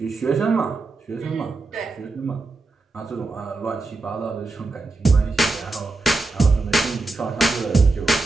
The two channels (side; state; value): left; quieter; 3.4 dB